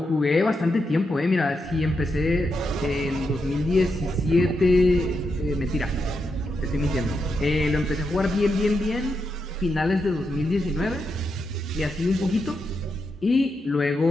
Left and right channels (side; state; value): both; normal; correlation 0.84